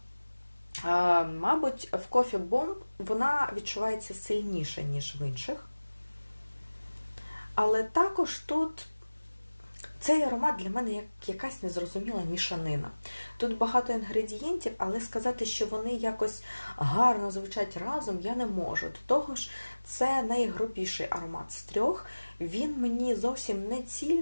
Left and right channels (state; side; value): inverted; both; correlation -1.00